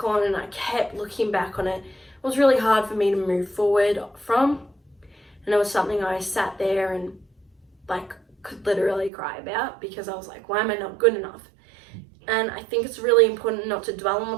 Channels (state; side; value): drops out; left; at 9.1 s